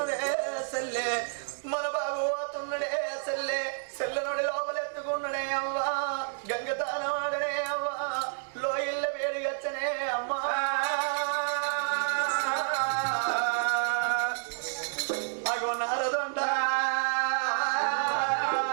సెల్లే మన బాబు పోతున్నడే సెల్లే సెల్లనుడి లోపలెత్తుకున్నడే అవ్వా గంగతానవాడనే అవ్వా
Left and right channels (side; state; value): left; silent; digital silence